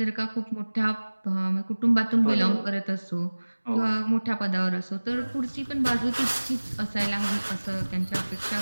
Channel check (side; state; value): both; inverted; correlation -1.00